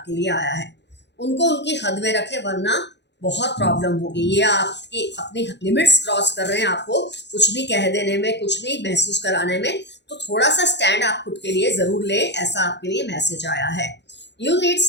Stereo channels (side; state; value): right; late; 0.50 ms